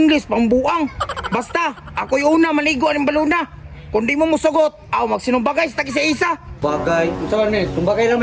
pambuang. Basta, ako'y una maligo ng baluna. Kung di mo musugot, magsinumbagay sa isa-isa. Bagay. Unsa man Mel? Tumbagay na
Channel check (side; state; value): both; identical; correlation 1.00